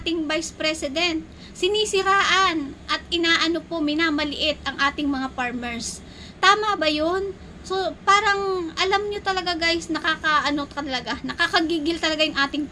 ating Vice President? Sinisiraan at minamaliit ang ating mga farmers. Tama ba yun? So, parang, alam nyo talaga guys, nakakagigil talaga yung ating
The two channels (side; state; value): both; identical; correlation 1.00